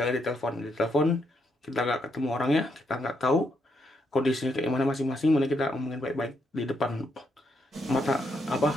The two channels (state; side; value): normal; both; correlation 0.78